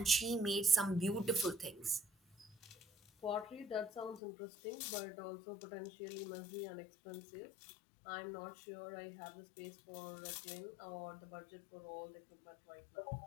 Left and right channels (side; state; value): right; drops out; at 4.2 s